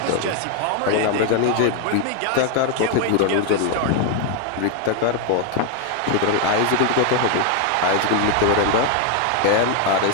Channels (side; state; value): both; different; correlation 0.01